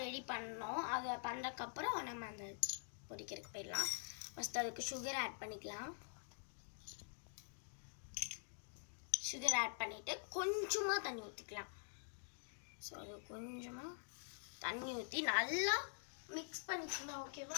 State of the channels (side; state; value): right; silent; digital silence